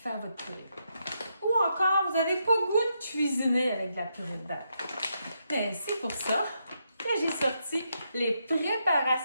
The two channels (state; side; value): inverted; both; correlation -0.81